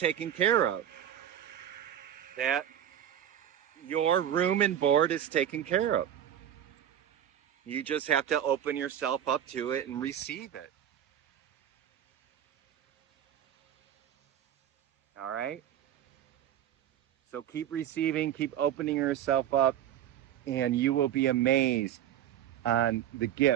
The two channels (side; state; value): left; quieter; 10.6 dB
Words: care of. That your room and board is taken care of. You just have to open yourself up to it and receive it. All right? So keep receiving, keep opening yourself up, and you will be amazed on the